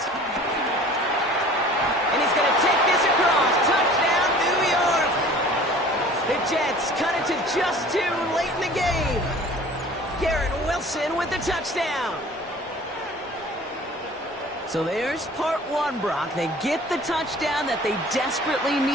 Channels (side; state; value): both; normal; correlation 0.46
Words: And he's going to take this across. Touchdown, New York. The Jets cut it to just 2 late in the game. Garrett Wilson with the touchdown. So there's part 1, Brock. They get the touchdown that they desperately